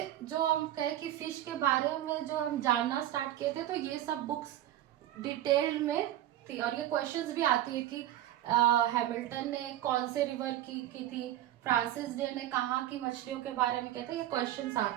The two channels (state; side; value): quieter; left; 13.1 dB